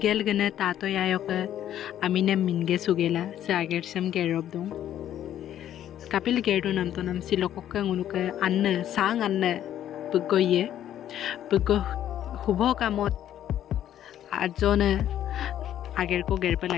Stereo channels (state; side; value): quieter; right; 11.2 dB